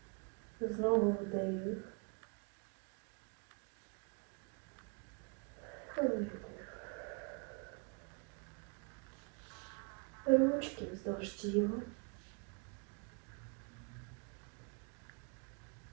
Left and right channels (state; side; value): quieter; left; 34.5 dB